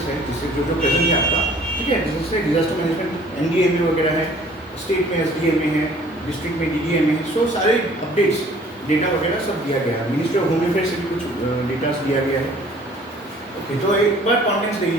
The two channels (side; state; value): both; normal; correlation 0.54